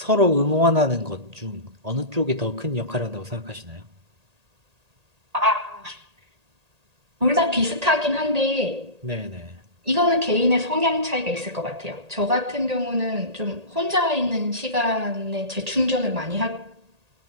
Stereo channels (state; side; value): late; left; 1.8 ms